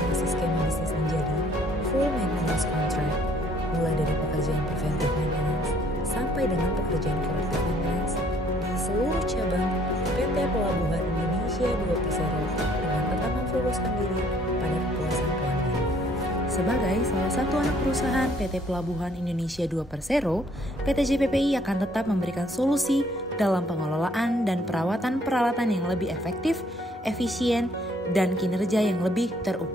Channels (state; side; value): normal; both; correlation 0.63